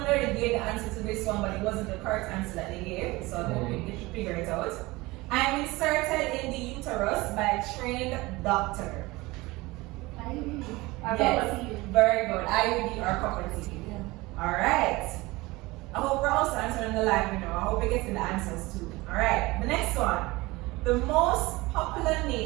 already gave the answer to this one, but it wasn't the correct answer that they gave. So I hope you should figure it out. I'm inserted in the uterus by a trained doctor. IUD. Yes, very good. IUD or copper T. Yeah. All right. I hope we're also answering the live, I hope we're getting the answers too. All right. The next one. The most popular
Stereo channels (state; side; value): quieter; left; 21.5 dB